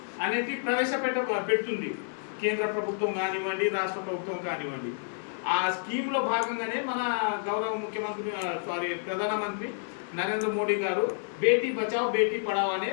అనేది పెడుతుంది కేంద్ర ప్రభుత్వం కానివ్వండి, రాష్ట్ర ప్రభుత్వం కానివ్వండి. ఆ స్కీమ్లో భాగంగానే మన గౌరవ ముఖ్యమంత్రి ప్రధానమంత్రి నరేంద్ర మోడీ గారు బేటీ బచావ్ బేటీ పడావ్ అనే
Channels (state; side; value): silent; right; 58 dB below the other